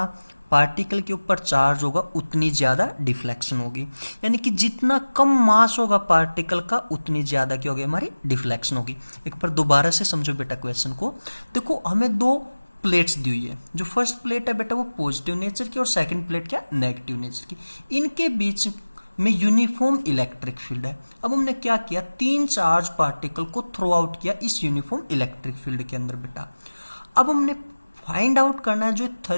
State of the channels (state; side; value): inverted; both; correlation -1.00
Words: पार्टिकल के ऊपर चार्ज होगा उतनी ज्यादा डिफ्लेक्शन होगी, यानी कि जितना कम मास होगा पार्टिकल का उतनी ज्यादा क्या होगी हमारी डिफ्लेक्शन होगी। एक बार दोबारा से समझो बेटा क्वेश्चन को। देखो हमें दो प्लेट्स दी हुई है, जो फर्स्ट प्लेट है बेटा वो पॉजिटिव नेचर की और सेकंड प्लेट क्या नेगेटिव नेचर की। इनके बीच में यूनिफॉर्म इलेक्ट्रिक फील्ड है। अब हमने क्या किया, तीन चार्ज पार्टिकल को थ्रो आउट किया इस यूनिफॉर्म इलेक्ट्रिक फील्ड के अंदर बेटा। अब हमने फाइंड आउट करना है जो